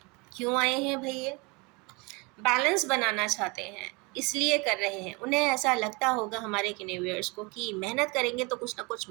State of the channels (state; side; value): quieter; left; 28.1 dB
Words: क्यों आए हैं भाई? ये बैलेंस बनाना चाहते हैं, इसलिए कर रहे हैं। उन्हें ऐसा लगता होगा, हमारे किनेवियर्स को, कि मेहनत करेंगे तो कुछ ना कुछ